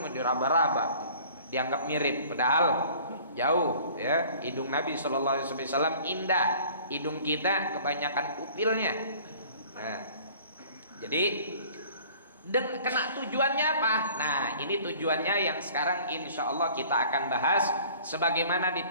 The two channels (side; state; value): both; inverted; correlation -0.50